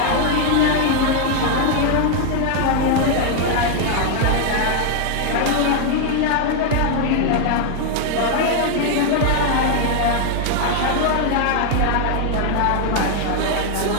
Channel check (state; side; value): different; both; correlation 0.00